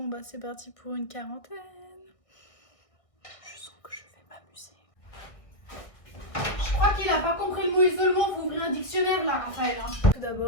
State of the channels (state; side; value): late; right; 1.6 ms